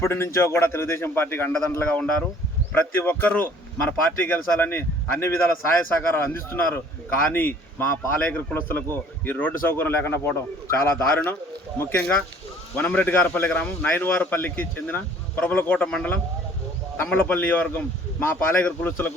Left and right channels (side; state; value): both; normal; correlation 0.54